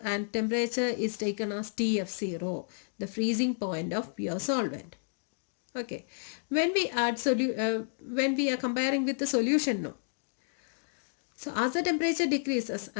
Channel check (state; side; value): silent; right; digital silence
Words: and temperature is taken as TF0, the freezing point of pure solvent. Okay, when we add when we are comparing with the solution, so as the temperature decreases,